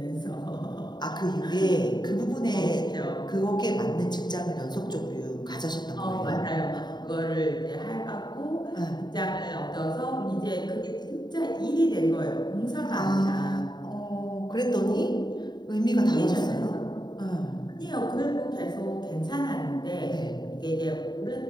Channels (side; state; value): right; late; 0.21 ms